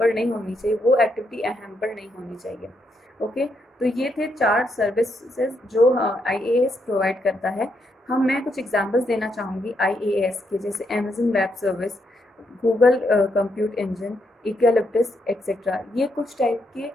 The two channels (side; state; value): both; normal; correlation 0.78